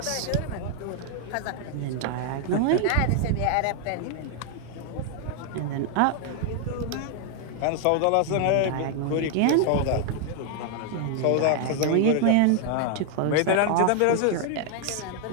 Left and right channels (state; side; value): different; both; correlation 0.00